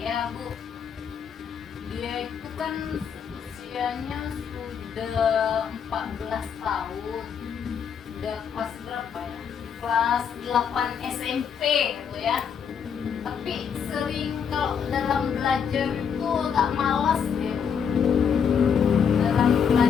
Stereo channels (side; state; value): right; quieter; 7.2 dB